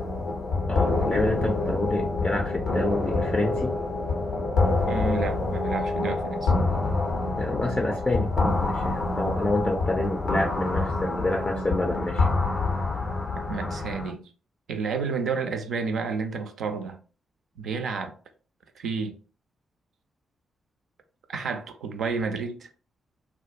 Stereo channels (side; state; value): both; normal; correlation 0.80